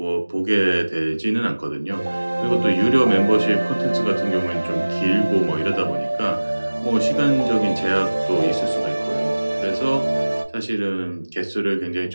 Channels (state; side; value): inverted; both; correlation -1.00